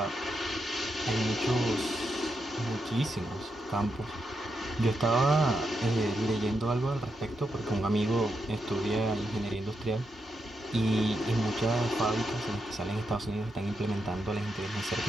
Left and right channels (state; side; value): normal; both; correlation 0.84